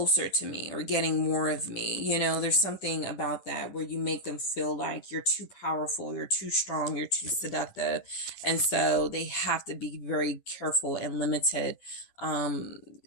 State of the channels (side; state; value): right; late; 10 ms